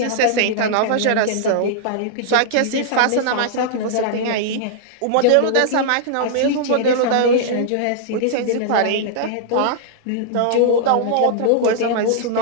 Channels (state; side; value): different; both; correlation -0.01